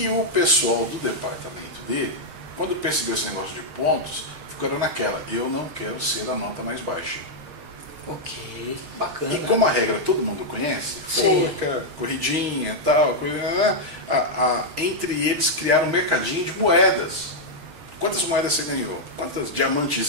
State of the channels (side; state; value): left; late; 6.5 ms